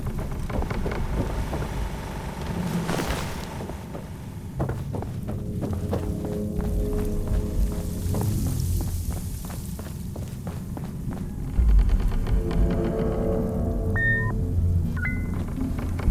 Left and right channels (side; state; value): both; identical; correlation 1.00